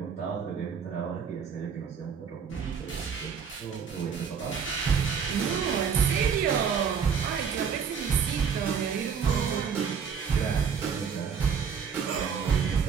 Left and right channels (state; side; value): quieter; left; 6.7 dB